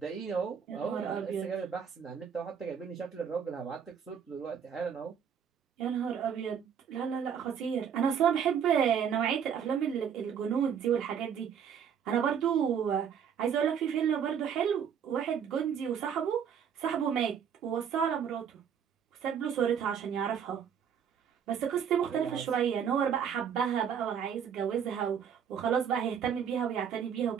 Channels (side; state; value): left; quieter; 7.8 dB